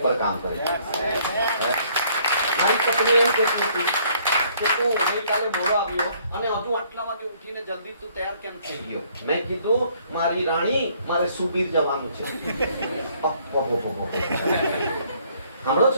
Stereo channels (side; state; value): both; inverted; correlation -0.63